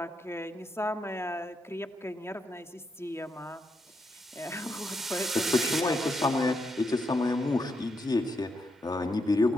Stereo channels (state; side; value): normal; both; correlation 0.81